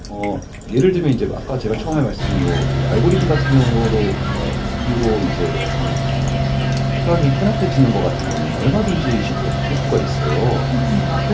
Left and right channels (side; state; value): both; identical; correlation 1.00